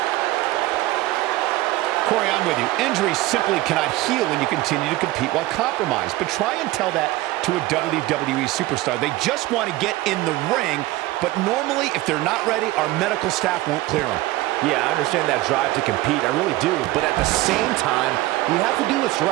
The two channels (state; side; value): quieter; left; 17.7 dB